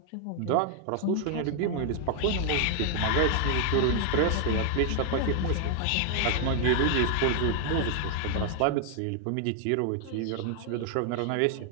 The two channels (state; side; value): different; both; correlation 0.00